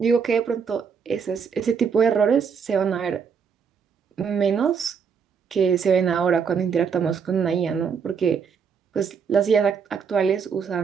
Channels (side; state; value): left; quieter; 6.4 dB